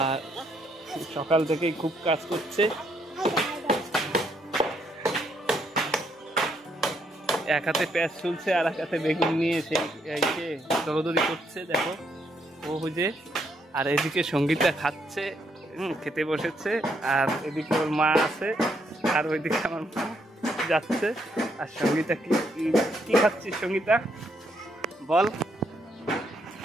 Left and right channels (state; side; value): normal; both; correlation 0.74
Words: আর সকাল থেকেই খুব কাজ করছে। এক হাতে পেঁয়াজ ছুলছে আর এক হাতে বেগুন নিয়ে সেই দৌড়দৌড়ি করছে দেখো ও হুজে। আর এদিকে সঙ্গীতা খাচ্ছে, খেতে বসেছে, আর এদিকে ওর মা আছে, আর ওইদিকে আমার মা যাচ্ছে। আর সঙ্গীতা কি খাচ্ছিস সঙ্গীতা বল?